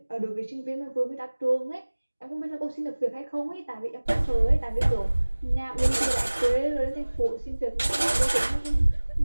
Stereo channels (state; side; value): inverted; both; correlation -1.00